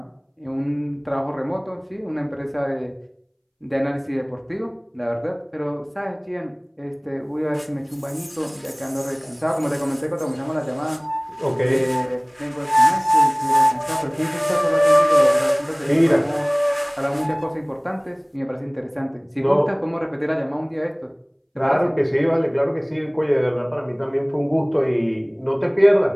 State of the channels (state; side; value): identical; both; correlation 1.00